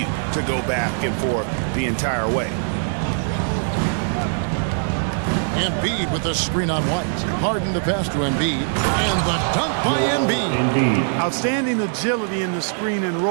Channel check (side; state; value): left; silent; digital silence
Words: to go back and forth the entire way. Embiid with the screen on White. Harden the pass to Embiid. And the dunk by Embiid. Outstanding agility in the screen and